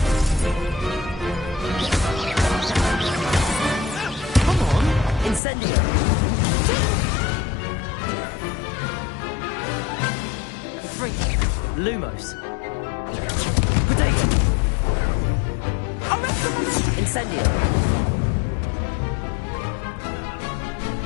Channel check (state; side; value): drops out; right; at 5.4 s